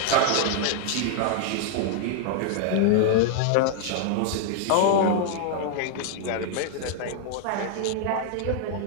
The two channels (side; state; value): both; different; correlation -0.01